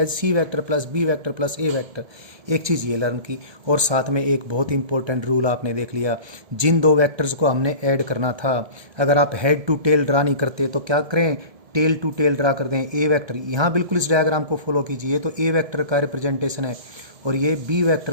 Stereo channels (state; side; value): late; left; 1.7 ms